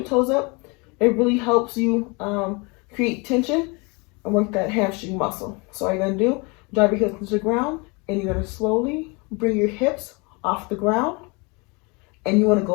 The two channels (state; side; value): quieter; right; 29.0 dB